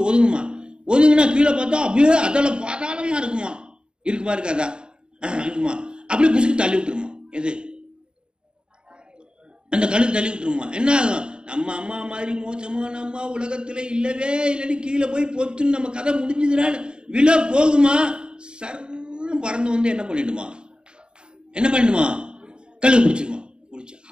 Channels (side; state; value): left; late; 0.050 ms